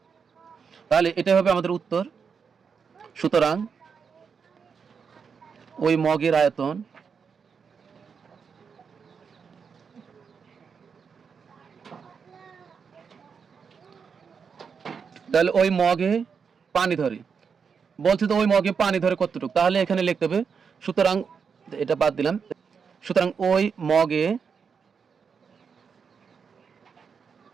তাহলে এটা হবে আমাদের উত্তর। সুতরাং ওই মগের আয়তন তাহলে ওই মগে পানি ধরে, বলছে তো ওই মগে পানি ধরে কতটুকু, তাহলে এখানে লিখতে হবে, সুতরাং এটা বাদ দিলাম। সুতরাং ওই মগে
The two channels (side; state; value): left; quieter; 6.1 dB